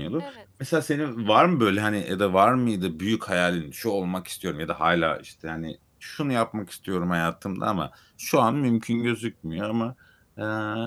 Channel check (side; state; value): both; identical; correlation 1.00